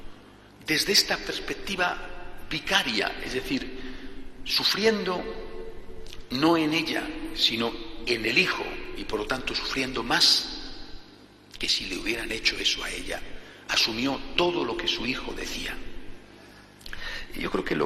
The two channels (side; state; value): both; identical; correlation 1.00